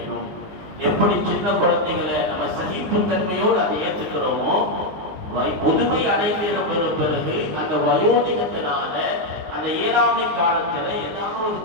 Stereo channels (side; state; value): left; late; 19 ms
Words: எப்படி சின்ன குழந்தைகளை நம்ம சகிப்புத்தன்மையோடு அதை ஏற்றுக்கிறோமோ, முதுமை அடைந்த பிறகு அந்த வயோதிகத்தினால அந்த இயலாமை காலத்துல ஏதாவது ஒரு